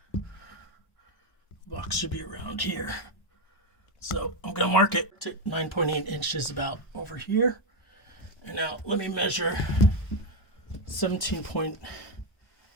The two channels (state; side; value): late; right; 1.0 ms